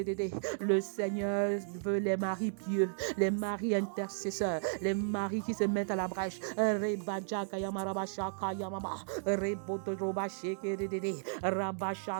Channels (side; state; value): left; silent; digital silence